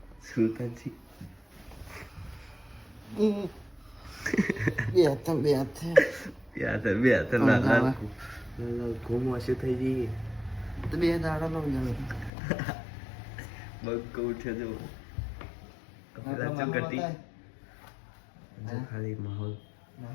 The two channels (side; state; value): right; drops out; at 12.3 s